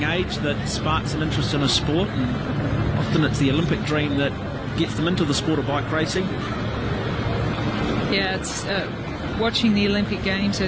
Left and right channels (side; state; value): both; identical; correlation 1.00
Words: age that sparks an interest in a sport. And often it's the Olympic dream that gets them into the sport of bike racing. Yeah, it's watching the Olympic Games